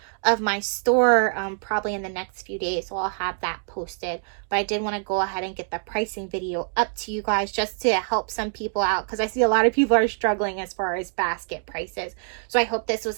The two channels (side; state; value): left; silent; digital silence